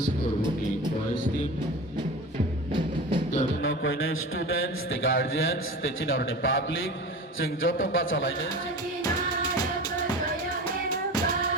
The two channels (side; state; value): both; normal; correlation 0.32